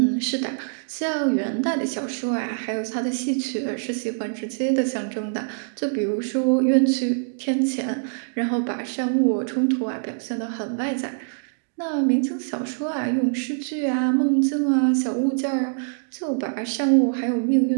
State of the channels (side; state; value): left; silent; digital silence